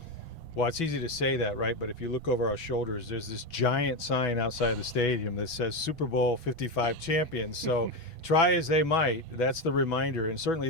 Well, it's easy to say that, right? But if you look over our shoulders, there's this giant sign outside the stadium that says Super Bowl 55 champions. So try as they might, that's the reminder. And certainly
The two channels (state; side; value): late; right; 6.1 ms